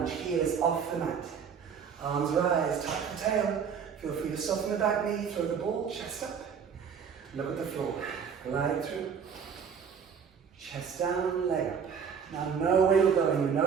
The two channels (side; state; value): left; quieter; 6.9 dB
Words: heel is off the mat. Arms rise, tuck the tail. Feel free to soften the back knee, throw the ball, chest up. Look at the floor, glide through. Chest down, leg up. Now know where you're going, you